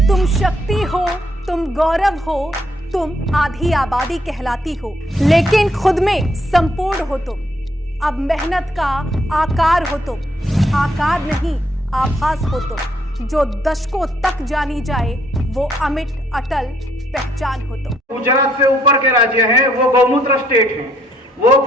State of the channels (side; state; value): both; normal; correlation 0.70